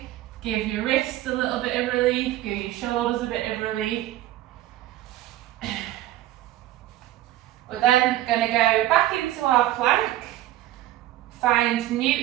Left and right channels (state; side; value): quieter; left; 14.7 dB